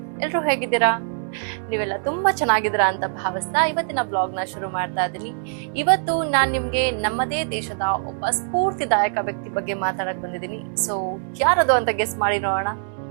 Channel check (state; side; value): silent; left; digital silence